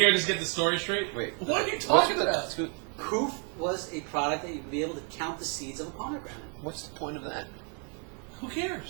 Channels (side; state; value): left; quieter; 39.4 dB